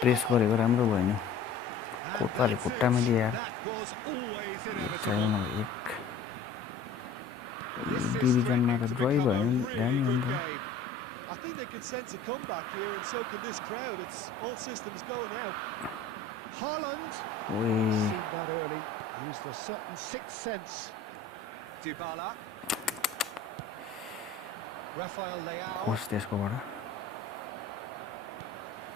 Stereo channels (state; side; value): quieter; right; 3.6 dB